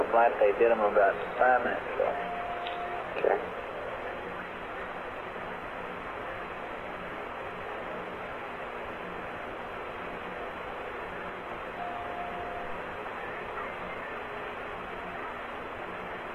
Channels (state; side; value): identical; both; correlation 1.00